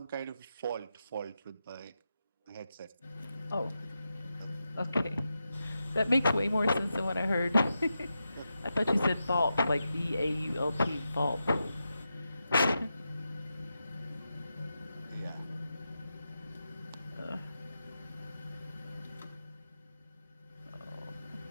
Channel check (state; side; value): inverted; both; correlation -0.89